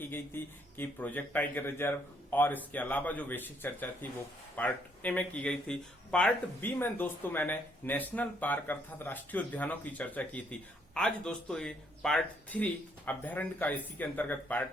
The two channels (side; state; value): both; normal; correlation 0.70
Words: गई थी कि प्रोजेक्ट टाइगर रिजर्व, और इसके अलावा जो बेसिक चर्चा थी वो पार्ट ए में की गई थी। पार्ट बी में दोस्तों मैंने नेशनल पार्क अर्थात राष्ट्रीय उद्यानों की चर्चा की थी। आज दोस्तों ये पार्ट 3 अभ्यारण्य का इसी के अंतर्गत पार्ट